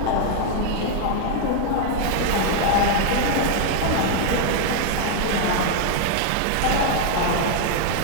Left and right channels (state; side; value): different; both; correlation 0.00